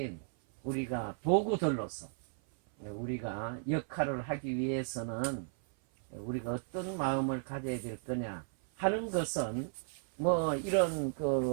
우리가 도구들로서 우리가 역할을 하기 위해서는 우리가 어떤 마음을 가져야 될 거냐 하는 것은 뭐 이런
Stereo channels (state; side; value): silent; left; 55 dB below the other